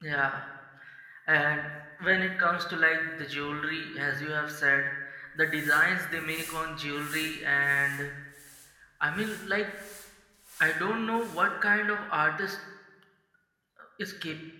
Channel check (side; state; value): both; identical; correlation 1.00